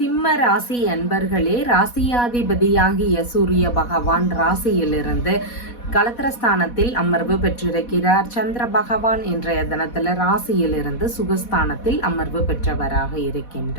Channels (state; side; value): late; right; 4.1 ms